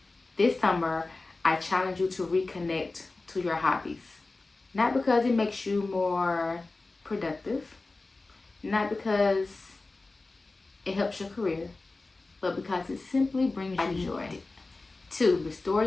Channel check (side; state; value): right; quieter; 3.4 dB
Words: This summer, I challenge you to reconnect to your hobbies. Not because it makes you more productive, not because it helps your career, but because it simply brings you joy. 2, restore